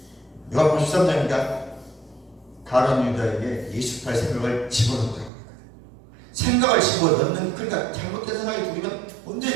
요한복음 13장이니까 가룟 유다에게 28 생각을 집어넣었다고 합니다. 생각을 집어넣는, 그러니까 잘못된 생각이 들으면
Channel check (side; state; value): left; drops out; at 5.3 s